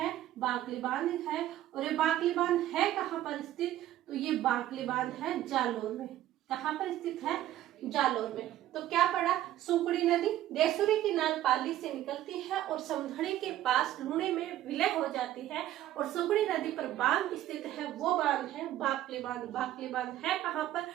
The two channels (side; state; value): left; quieter; 13.3 dB